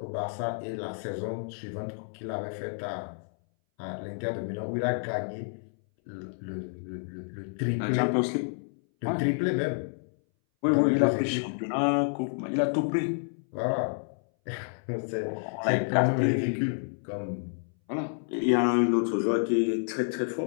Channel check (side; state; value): right; silent; 58 dB below the other